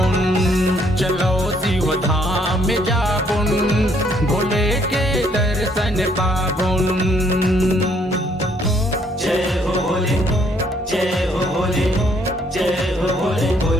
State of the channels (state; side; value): normal; both; correlation 0.67